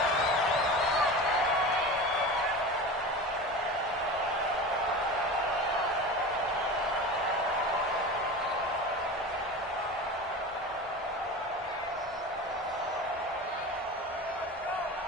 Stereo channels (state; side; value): normal; both; correlation 0.31